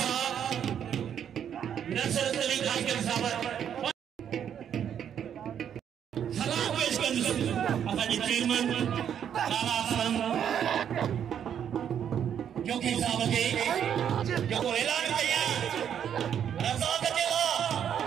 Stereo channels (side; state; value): left; quieter; 8.9 dB